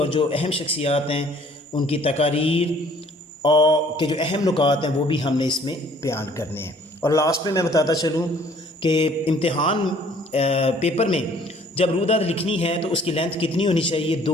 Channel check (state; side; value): normal; both; correlation 0.57